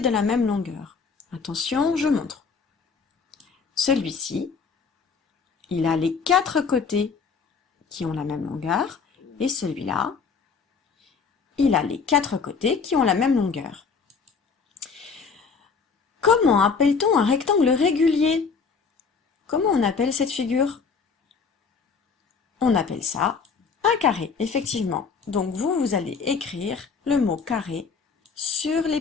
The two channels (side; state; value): right; quieter; 5.3 dB